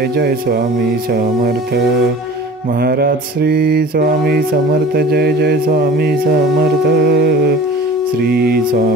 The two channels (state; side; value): normal; both; correlation 0.42